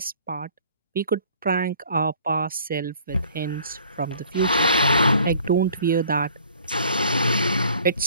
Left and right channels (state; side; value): inverted; both; correlation -0.54